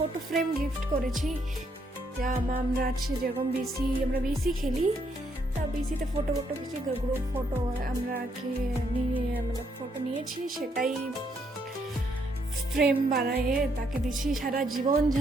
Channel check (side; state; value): both; normal; correlation 0.73